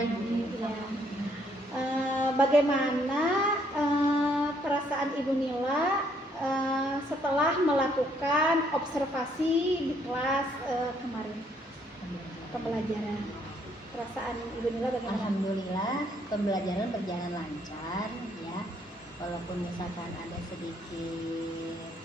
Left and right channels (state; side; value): normal; both; correlation 0.68